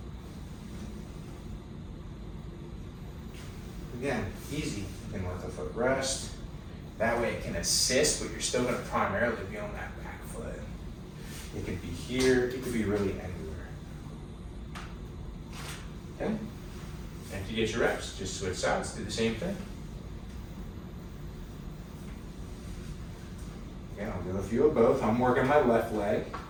Again, easy. You can let the foot rest. That way it can assist, but you're still going to primarily be on that back foot. It could be here, it could be really anywhere. Okay? And if you get your reps, just switch sides, do the same thing. Okay, I'll do a few of both. I'm working my left leg,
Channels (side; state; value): both; identical; correlation 1.00